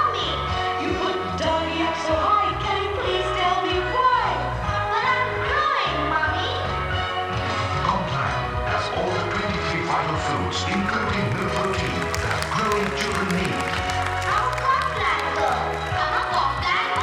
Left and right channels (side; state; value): both; identical; correlation 1.00